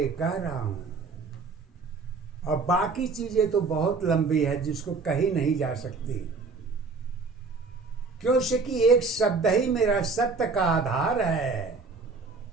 कह रहा हूं। और बाकी चीजें तो बहुत लंबी है, जिसको कही नहीं जा सकती, क्योंकि एक शब्द ही मेरा सत्य का आधार है।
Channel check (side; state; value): left; quieter; 4.3 dB